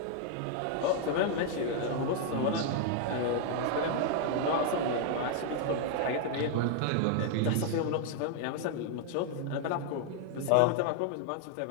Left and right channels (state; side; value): different; both; correlation 0.00